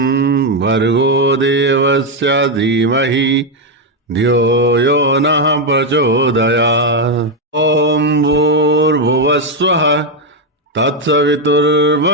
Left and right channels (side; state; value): both; normal; correlation 0.04